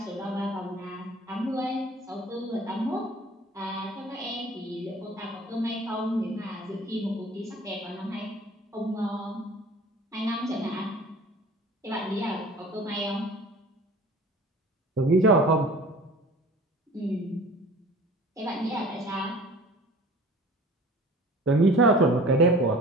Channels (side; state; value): both; normal; correlation 0.45